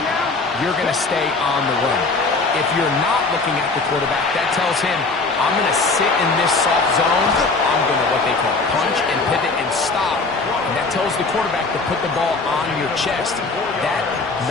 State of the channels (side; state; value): right; quieter; 3.8 dB